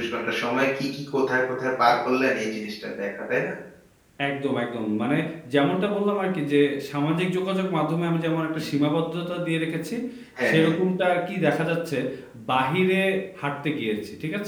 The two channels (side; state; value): both; identical; correlation 1.00